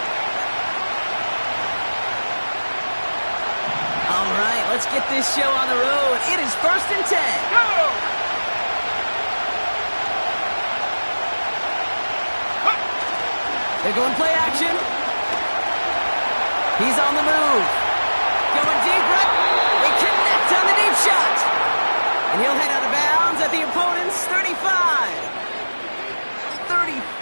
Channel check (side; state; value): both; inverted; correlation -1.00